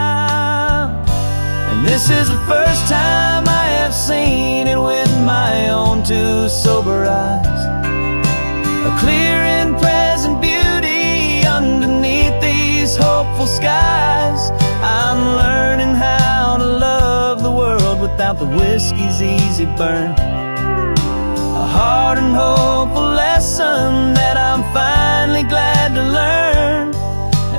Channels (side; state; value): both; inverted; correlation -1.00